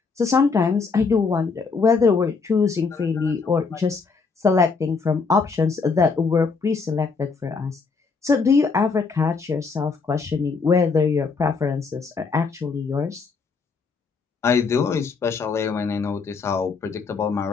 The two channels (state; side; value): quieter; right; 4.8 dB